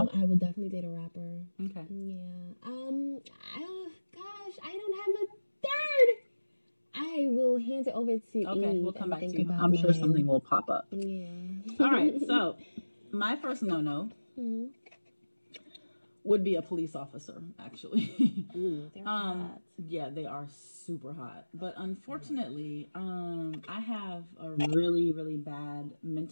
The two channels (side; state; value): both; inverted; correlation -1.00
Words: I would definitely date a rapper. Okay. Yeah. Gosh, I don't have a third. I will hand it over to Eve. Okay, we'll come back to you. I'm sure something will pop up. Yeah. All right, so my first no-no would be a police officer, actually. They're hot. Yeah, they are super hot. But unfortunately, I have a really, really bad